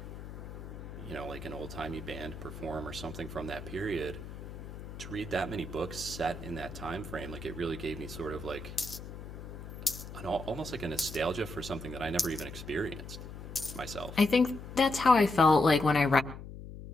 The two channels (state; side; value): noise; left; hum, 11 dB below the sound